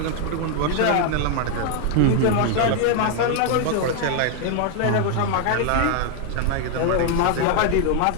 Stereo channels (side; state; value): both; different; correlation 0.00